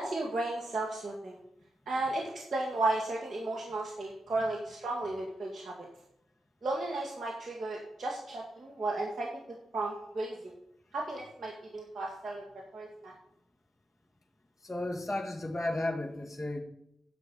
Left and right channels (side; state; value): both; normal; correlation 0.85